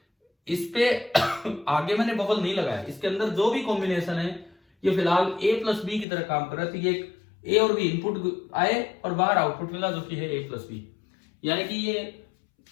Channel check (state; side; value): drops out; right; at 6.1 s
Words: इस पे आगे मैंने बबल नहीं लगाया। इसके अंदर जो भी कॉम्बिनेशन है ये फिलहाल ए प्लस बी की तरह काम कर रहा है। तो ये ए और बी इनपुट आए और बाहर आउटपुट मिला जो कि है ए प्लस बी। यानी कि ये